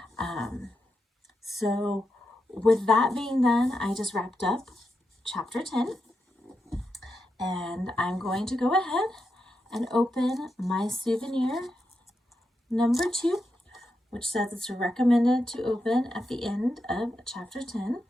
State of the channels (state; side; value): normal; both; correlation 0.86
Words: So with that being done, I just wrapped up chapter 10. And I'm going to go ahead and open my souvenir number 2, which says it's recommended to open at the end of chapter 10.